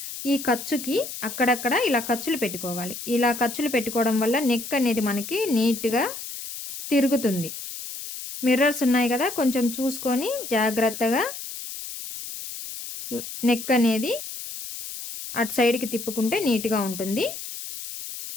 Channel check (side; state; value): left; noise; hiss, 9 dB below the sound